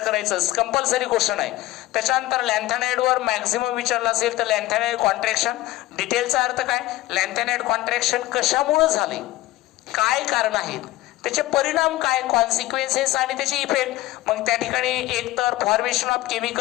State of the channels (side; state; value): right; quieter; 17.1 dB